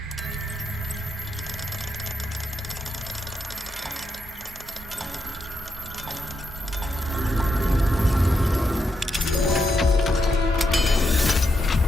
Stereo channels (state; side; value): normal; both; correlation 0.82